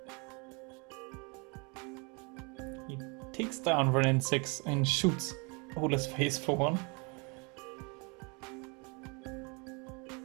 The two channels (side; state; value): left; quieter; 31.7 dB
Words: down Renin 6 and shoots Ole's face for one.